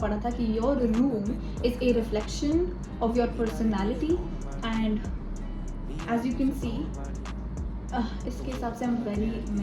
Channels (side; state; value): both; identical; correlation 1.00